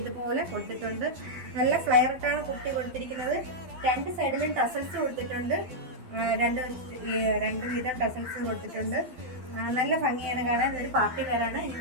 ഇതുപോലെ കൊടുത്തിട്ടുണ്ട്. നല്ല ഫ്ലയറിട്ടാണ് കുട്ടി കൊടുത്തിരിക്കുന്നത്. രണ്ട് സൈഡിലും ടസൽസ് കൊടുത്തിട്ടുണ്ട്. രണ്ട് വീതം ടസൽസ് കൊടുത്തിട്ടുണ്ട്. നല്ല ഭംഗിയാണ് കാണാൻ. ഇതൊരു പാർട്ടി വെയറാണ്. ഇനി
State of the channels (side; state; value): left; late; 12 ms